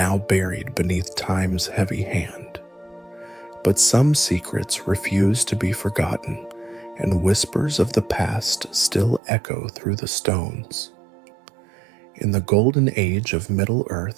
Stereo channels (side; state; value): left; drops out; at 9.2 s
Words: buried beneath time's heavy hand. But some secrets refuse to be forgotten, and whispers of the past still echo through the stones. In the golden age of